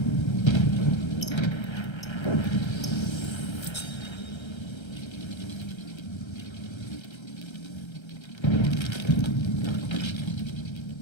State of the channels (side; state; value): right; late; 1.3 ms